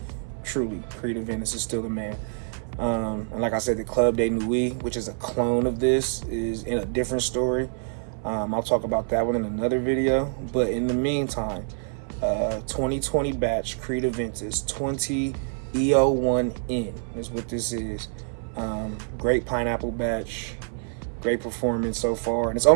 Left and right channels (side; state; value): left; silent; 55 dB below the other